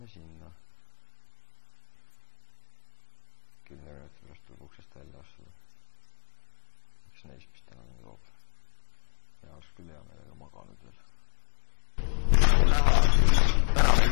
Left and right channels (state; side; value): silent; right; 58 dB below the other